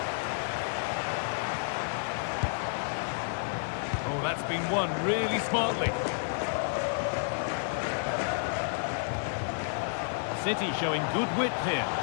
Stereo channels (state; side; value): silent; right; digital silence